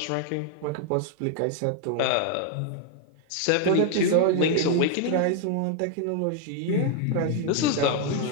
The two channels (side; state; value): both; different; correlation 0.01